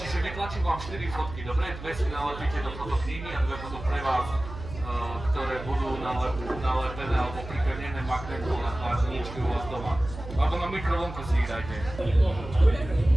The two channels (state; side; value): noise; right; hum, 11 dB below the sound